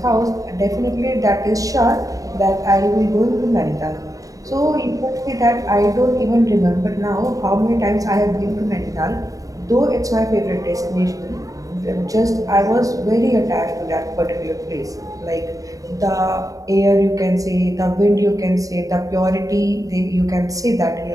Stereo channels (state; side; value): late; left; 0.17 ms